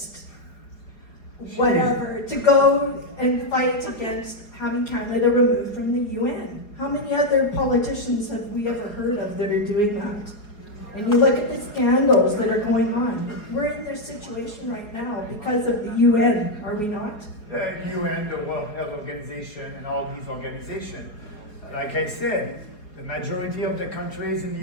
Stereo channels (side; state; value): right; late; 4.8 ms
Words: whatever, to go and fight against having Canada removed from the UN. How many other politicians have we ever heard of that are doing that? And you look at the scandals that are going on. We're in this situation right now because of the UN, are we not? The UN, the World Health Organization, and all these organizations. Like I said, the majority of the countries in the